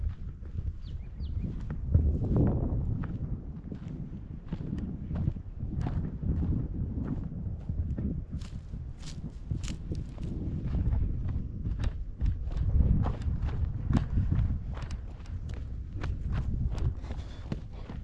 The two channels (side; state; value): both; identical; correlation 1.00